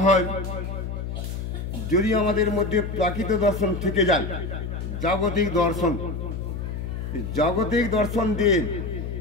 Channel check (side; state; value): left; noise; hum, 5 dB below the sound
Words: হয়, যদি আমাদের মধ্যে প্রাকৃত দর্শন থেকে যায়, জাগতিক দর্শন, জাগতিক দর্শন দিয়ে